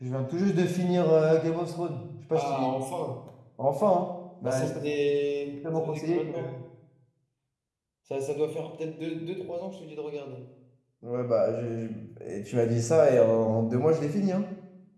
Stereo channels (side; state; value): both; identical; correlation 1.00